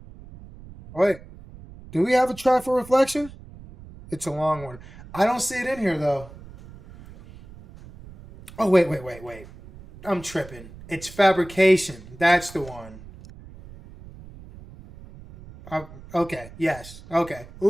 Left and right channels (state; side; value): noise; right; rumble, 18 dB below the sound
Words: Wait, do we have a track for Reflection? It's a long one. I don't see it in here, though. Oh, wait. I'm tripping. It's Fabrication. That's the one. Okay, yes. Okay.